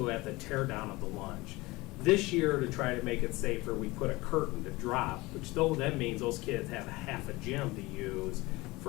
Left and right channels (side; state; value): right; quieter; 21.5 dB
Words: at the tear down of the lunch. This year, to try to make it safer, we put a curtain to drop, which though that means those kids have half a gym to use